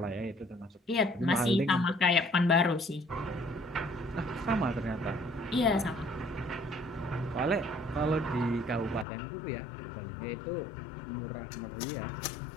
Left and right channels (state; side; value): drops out; right; at 9.1 s